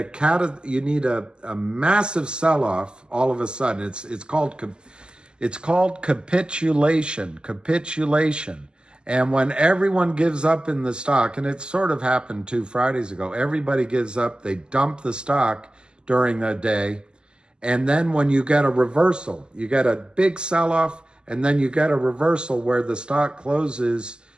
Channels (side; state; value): left; late; 0.048 ms